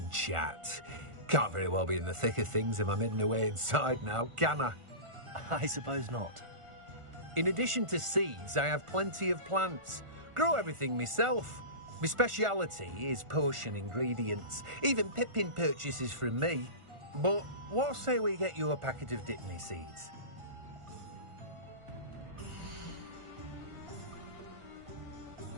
chat. Can't very well be in the thick of things if I'm hidden away inside now, can I? I suppose not. In addition to seeds, I have plenty of plants. Grow everything myself. My speciality is potion ingredients. Even Pippin purchases from me. But what say we get you a packet of dittany seeds?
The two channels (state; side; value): late; left; 1.4 ms